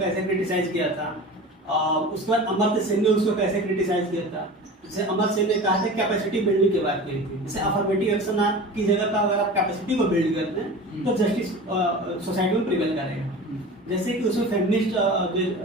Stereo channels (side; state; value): both; normal; correlation 0.35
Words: क्रिटिसाइज किया था, उसके बाद अमर्त्य सेन ने उसको कैसे क्रिटिसाइज किया था। जैसे अमर्त्य सेन ने कहा था कैपेसिटी बिल्डिंग की बात की थी, जैसे अफर्मेटिव एक्शन की जगह पर अगर आप कैपेसिटी को बिल्ड करते हैं तो जस्टिस सोसाइटी में प्रिवेल करेगा। जैसे कि उसमें फेमिनिस्ट